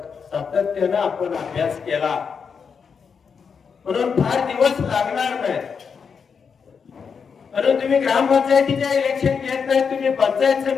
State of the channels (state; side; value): quieter; right; 6.1 dB